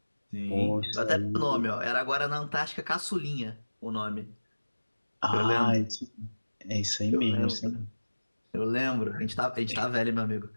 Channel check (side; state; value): both; inverted; correlation -1.00